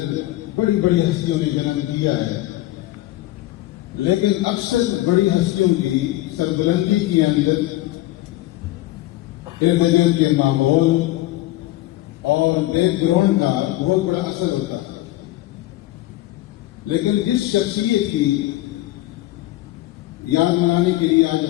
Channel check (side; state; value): right; quieter; 16.9 dB